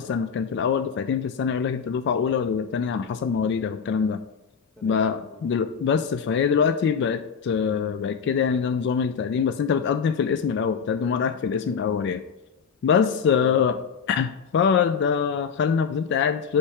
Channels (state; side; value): quieter; right; 6.3 dB